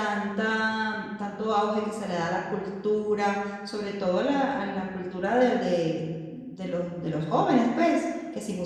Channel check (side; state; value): both; identical; correlation 1.00